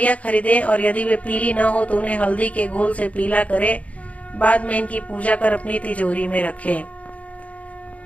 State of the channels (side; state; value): right; late; 0.066 ms